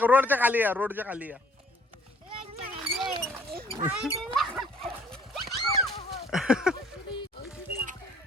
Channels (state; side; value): normal; both; correlation 0.59